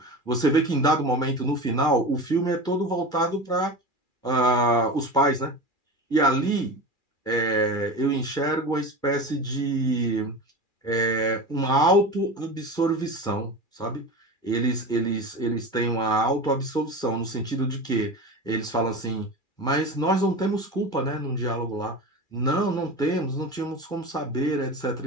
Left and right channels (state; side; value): late; right; 2.4 ms